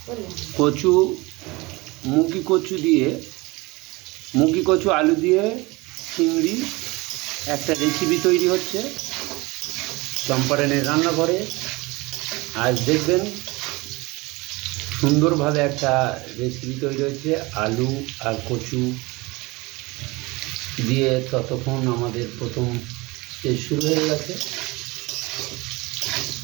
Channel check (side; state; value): left; quieter; 23.6 dB